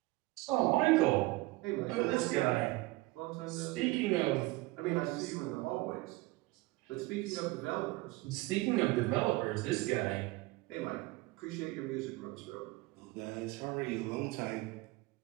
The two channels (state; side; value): quieter; left; 20.9 dB